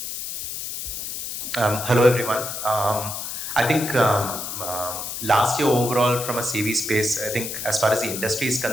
Hello everyone. I think last year overall from a CV space, I think as far as the industry is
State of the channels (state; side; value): noise; left; hiss, 6 dB below the sound